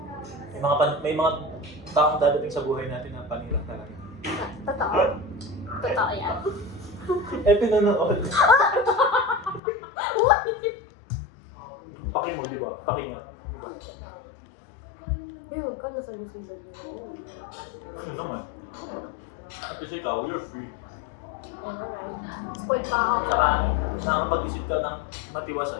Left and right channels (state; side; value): drops out; right; at 9.6 s